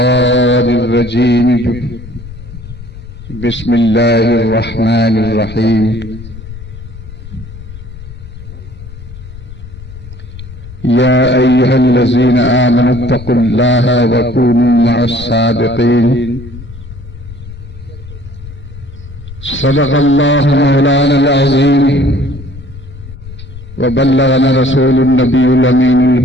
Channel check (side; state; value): left; noise; rumble, 14 dB below the sound